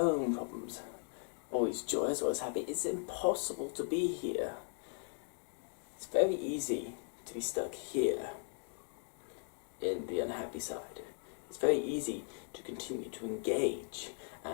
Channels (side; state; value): right; silent; 52 dB below the other